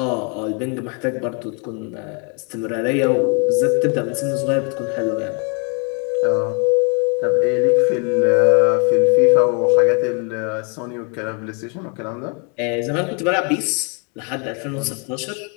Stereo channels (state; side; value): quieter; right; 37.1 dB